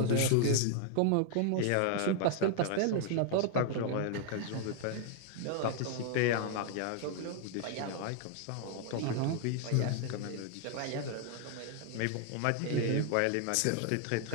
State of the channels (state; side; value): different; both; correlation 0.00